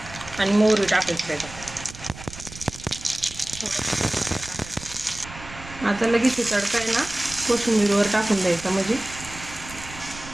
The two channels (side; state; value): right; noise; rumble, 15 dB below the sound